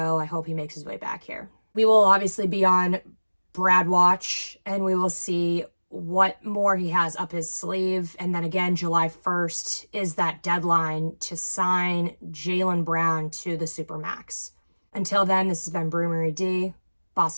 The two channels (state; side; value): inverted; both; correlation -1.00